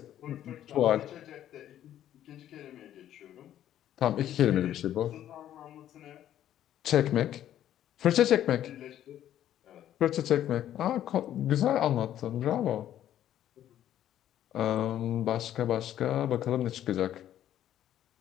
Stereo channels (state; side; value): quieter; right; 11.6 dB